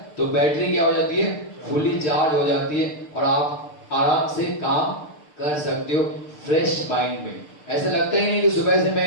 तो बैटरी क्या हो जाती है? फुली चार्ज हो जाती है और आप आराम से काम कर सकते हो फ्रेश माइंड में। ऐसा लगता ही नहीं कि सुबह से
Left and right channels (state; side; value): late; right; 6.7 ms